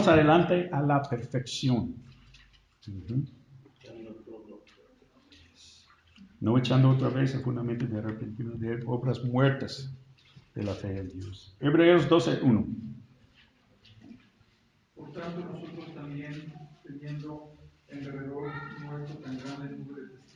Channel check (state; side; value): identical; both; correlation 1.00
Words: adelante a la perfección. No echando otra vez el fundamento de arrepentimiento de obras muertas de la fe en Dios. Hebreos 12.1. Por tanto, nosotros también, teniendo en derredor nuestro tan grande número de